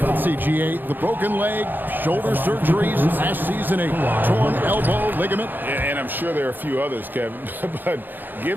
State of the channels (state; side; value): late; left; 0.090 ms